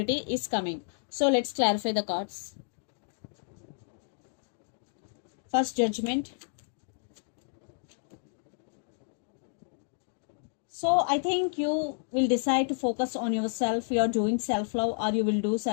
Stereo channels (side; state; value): right; silent; digital silence